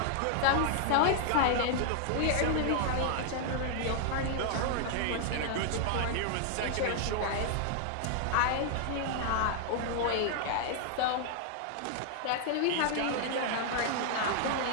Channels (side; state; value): both; different; correlation 0.00